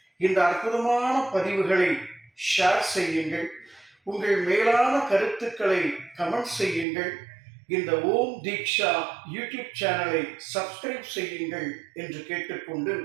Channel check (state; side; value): drops out; left; at 6.9 s